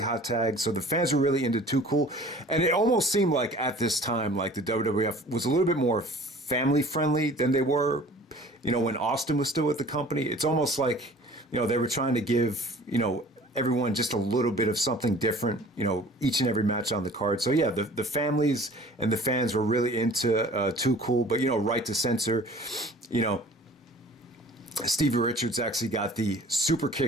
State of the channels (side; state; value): both; normal; correlation 0.47